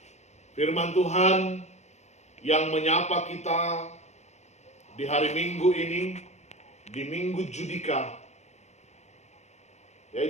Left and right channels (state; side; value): late; right; 0.33 ms